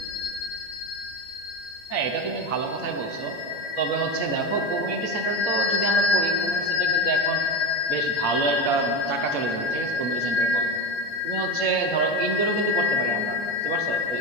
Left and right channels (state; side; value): late; right; 14 ms